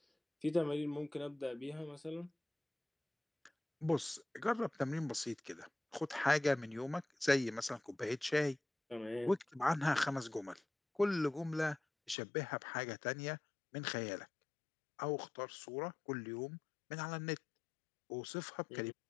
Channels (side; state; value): right; drops out; at 12.2 s